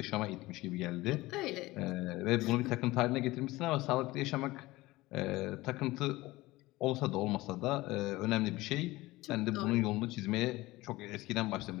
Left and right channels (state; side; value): quieter; right; 19.4 dB